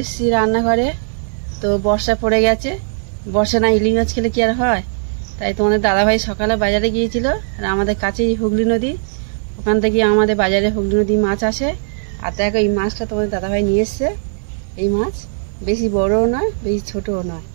রান্নাঘরে। তো বর্ষা পড়ে গেছে, বর্ষা না ইলিশ মাছ খেলে কি আর হয়, তাই তোমাদের দাদাভাই সকালে বাজারে গিয়েছিল। আর আমাদের কাছেই হুগলি নদী, ওখান থেকে আমাদের বাজারে হুগলি নদী মাছ আসে। আর দেখো এই মাছটা তোমাদের দাদাভাই নিয়ে এসছে। এই মাছ বেশি বড়ও নয়, বেশি ছোটও নয়।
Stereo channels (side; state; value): left; silent; digital silence